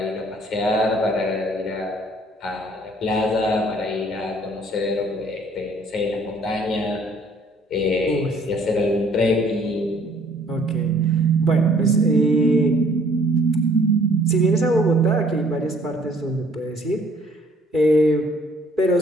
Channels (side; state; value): both; normal; correlation 0.59